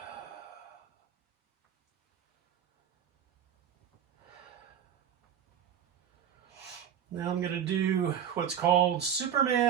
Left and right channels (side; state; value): left; quieter; 8.7 dB